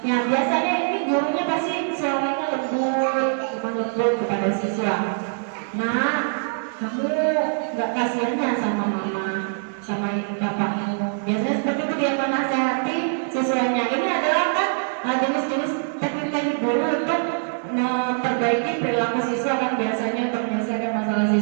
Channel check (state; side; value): silent; left; digital silence